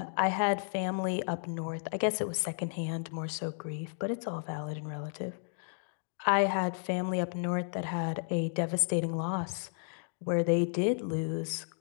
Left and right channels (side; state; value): right; silent; digital silence